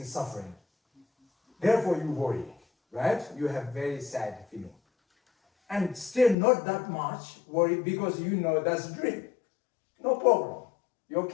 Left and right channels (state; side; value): drops out; right; at 6.4 s